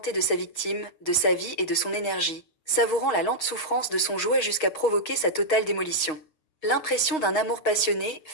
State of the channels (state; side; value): late; right; 6.4 ms